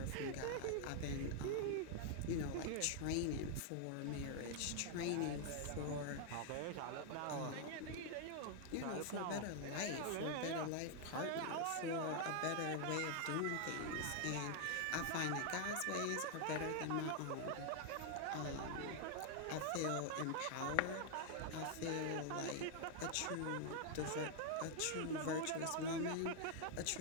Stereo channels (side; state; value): both; different; correlation 0.00